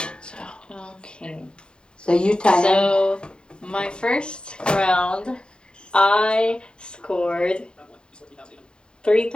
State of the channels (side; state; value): right; late; 0.050 ms